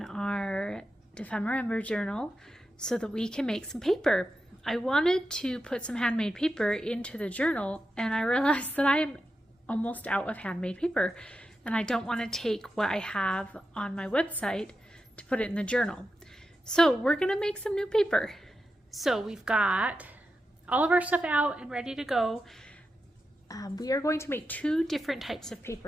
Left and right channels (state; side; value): normal; both; correlation 0.89